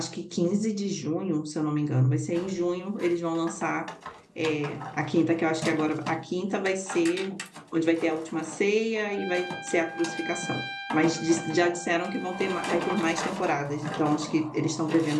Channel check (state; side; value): identical; both; correlation 1.00